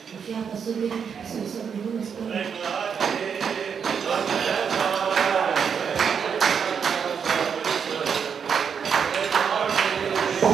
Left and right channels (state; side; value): quieter; left; 6.9 dB